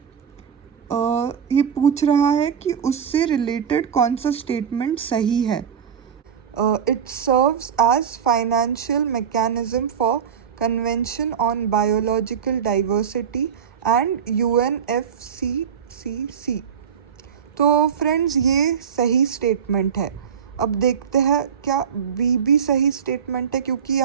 ये पूछ रहा है कि उससे रिलेटेड कौन सा स्टेटमेंट सही है। It serves as financial mechanism for convention on biological diversity and UNFCCC। तो फ्रेंड्स ये सही स्टेटमेंट है। अब देखते हैं क्या बी भी सही स्टेटमेंट है, क्योंकि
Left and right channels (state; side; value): quieter; left; 7.5 dB